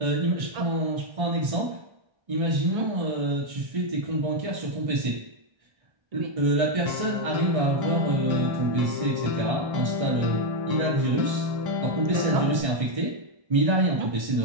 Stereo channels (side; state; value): left; late; 1.6 ms